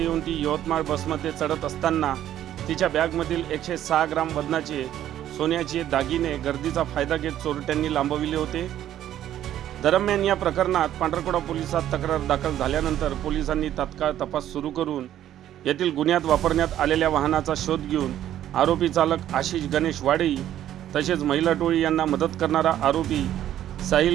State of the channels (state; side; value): quieter; left; 11.8 dB